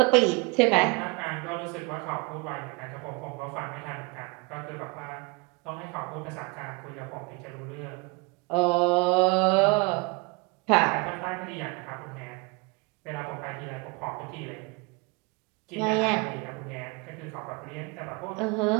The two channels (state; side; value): quieter; left; 27.9 dB